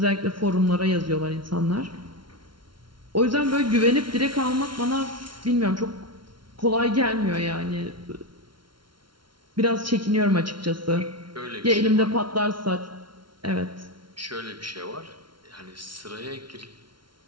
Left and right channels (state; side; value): late; left; 0.73 ms